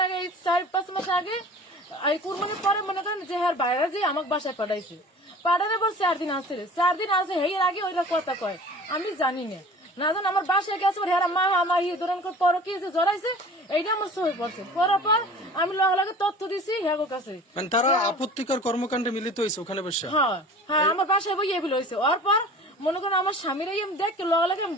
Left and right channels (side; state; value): both; normal; correlation 0.42